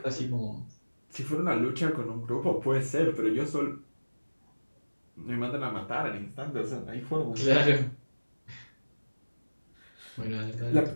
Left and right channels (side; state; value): both; inverted; correlation -1.00